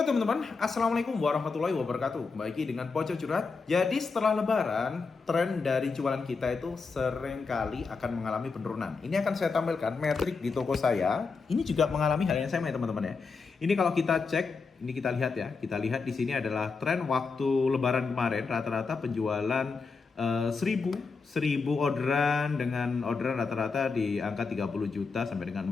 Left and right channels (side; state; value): right; quieter; 4.7 dB